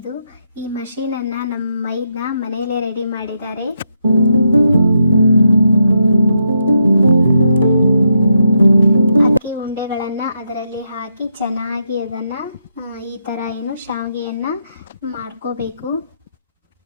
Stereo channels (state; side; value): inverted; both; correlation -0.80